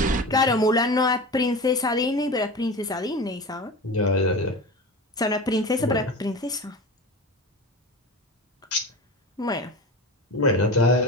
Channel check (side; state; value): both; normal; correlation 0.30